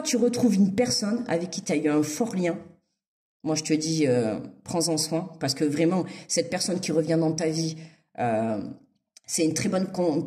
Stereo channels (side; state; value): both; identical; correlation 1.00